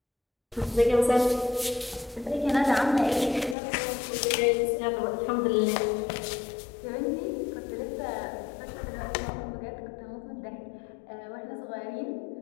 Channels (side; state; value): right; drops out; at 3.6 s